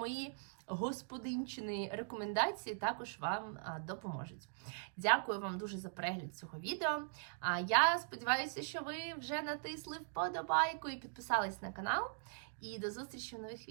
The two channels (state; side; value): silent; left; digital silence